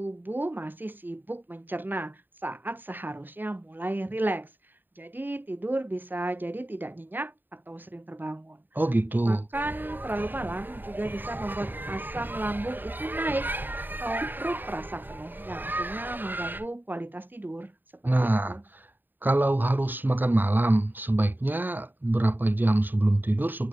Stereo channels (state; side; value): late; left; 0.092 ms